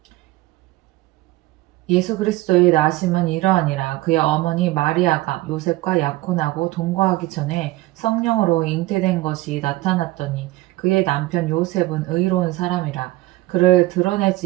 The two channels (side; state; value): left; quieter; 18.5 dB